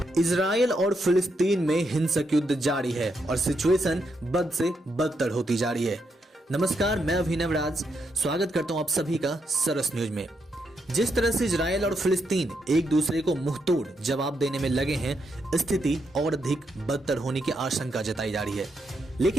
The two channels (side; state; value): both; normal; correlation 0.80